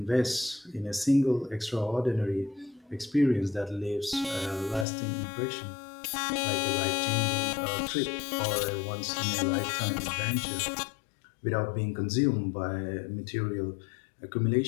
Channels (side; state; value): right; drops out; at 4.9 s